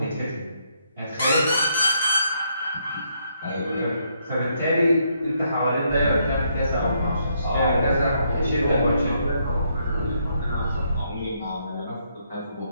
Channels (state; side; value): inverted; both; correlation -0.74